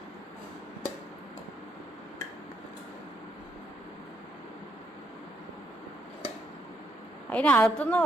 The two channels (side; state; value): both; normal; correlation 0.76